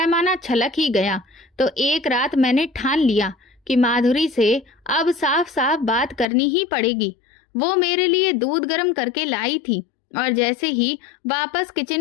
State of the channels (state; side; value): drops out; right; at 6.2 s